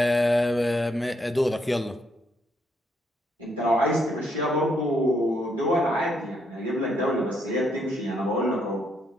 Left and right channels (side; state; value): both; normal; correlation 0.75